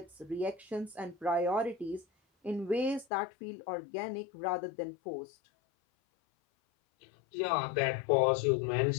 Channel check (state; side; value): drops out; right; at 3.1 s